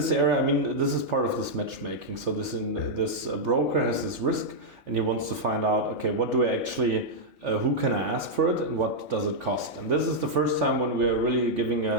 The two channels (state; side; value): normal; both; correlation -0.05